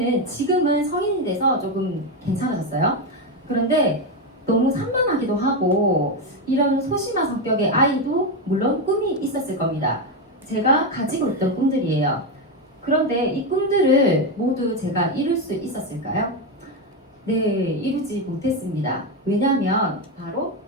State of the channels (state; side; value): normal; both; correlation 0.09